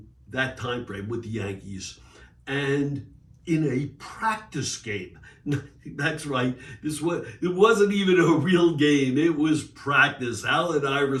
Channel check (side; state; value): both; identical; correlation 1.00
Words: that time frame with the Yankees. And in a practice game, that's right, it wasn't even a real game. It was practice, Allen